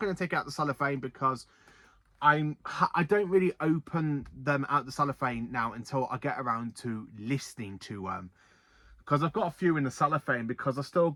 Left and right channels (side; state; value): both; identical; correlation 1.00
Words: to take out the cellophane, because I don't really open them out the cellophane now until I get around to listening to them, because I've got a few in the cellophane, because I've still